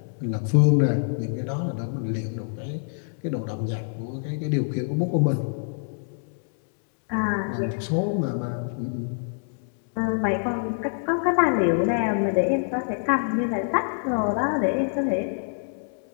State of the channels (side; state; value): right; silent; 61 dB below the other